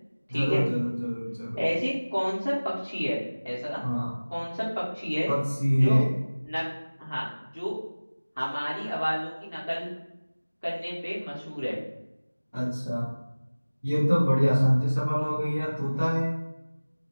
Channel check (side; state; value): both; inverted; correlation -1.00